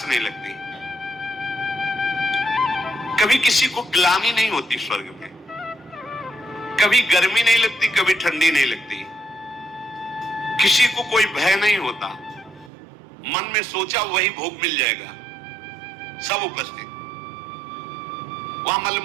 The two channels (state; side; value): drops out; left; at 12.7 s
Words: नहीं लगती, कभी किसी को ग्लानि नहीं होती स्वर्ग में, कभी गर्मी नहीं लगती, कभी ठंडी नहीं लगती, किसी को कोई भय नहीं होता। मन में सोचा वही भोग मिल जाएगा, सब उपस्थित। वहां